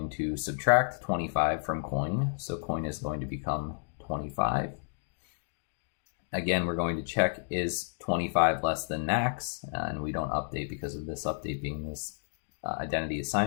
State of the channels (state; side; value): silent; right; digital silence